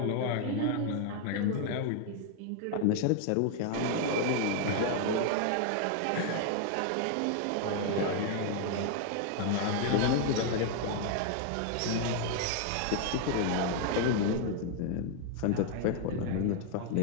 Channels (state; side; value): different; both; correlation 0.00